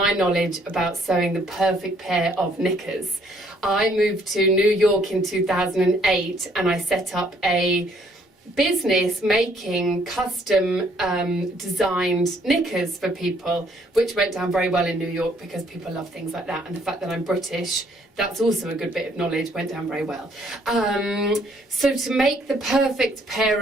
knowledge about sewing the perfect pair of knickers. I moved to New York in 2008 and I set up a business making custom designed knickers for people, which went down very well in New York because people love things like that, and the fact that I'm British, that's also a good bit of knowledge, went down very well. So to make the perfect pair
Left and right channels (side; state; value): both; normal; correlation 0.65